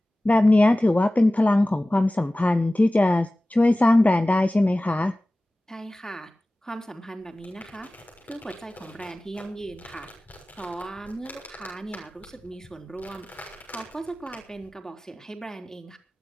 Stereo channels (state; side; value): normal; both; correlation 0.97